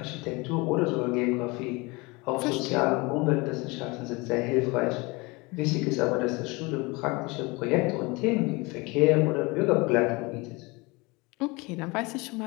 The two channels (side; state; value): right; quieter; 25.4 dB